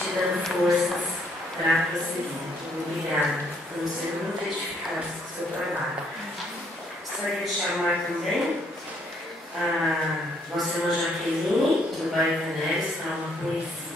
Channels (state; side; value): normal; both; correlation 0.69